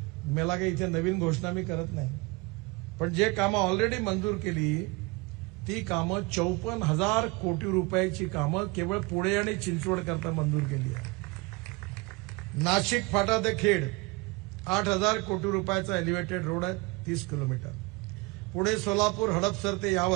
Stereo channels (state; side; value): quieter; left; 25.8 dB